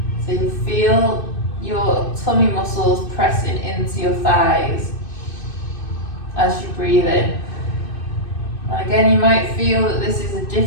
So you feel your tummy muscles pressing into your thighs as you breathe in. And again, you might feel that this is a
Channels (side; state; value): right; late; 2.6 ms